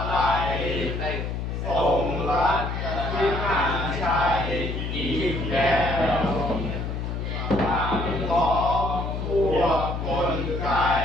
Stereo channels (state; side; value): noise; left; hum, 3 dB below the sound